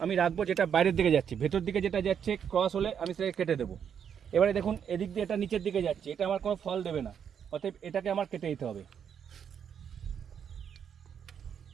আমি রাখবো যেটা বাইরের দিকে যাচ্ছে, ভেতর দিকে যেটা যাচ্ছে ক্রস হলে আমি সেটাকে কেটে দেবো। এবারে দেখুন, এদিক দিয়ে এটা নিচের দিকে যাচ্ছে, এটা আমার কোনো ফল দেবে না, অতএব এটাকে আমার কেটে দিতে হবে।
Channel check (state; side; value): quieter; left; 8.0 dB